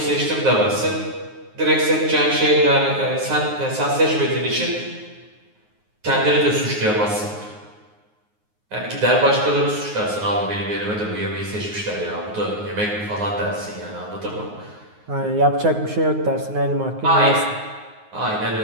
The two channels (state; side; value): late; left; 9.5 ms